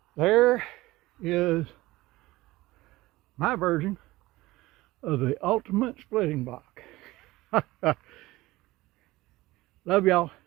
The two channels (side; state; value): left; quieter; 18.8 dB